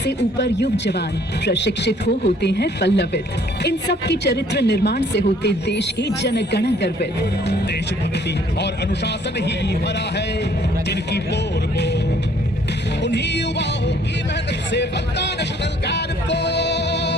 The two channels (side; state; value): both; normal; correlation 0.60